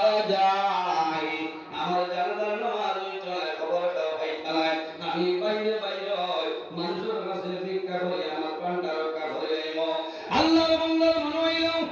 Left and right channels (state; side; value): identical; both; correlation 1.00